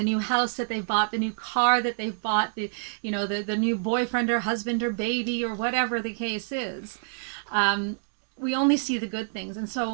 new house that they bought, the new car that they've bought, the new boyfriend or husband or baby or whatever the case is. We only see the good things. And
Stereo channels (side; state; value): left; silent; digital silence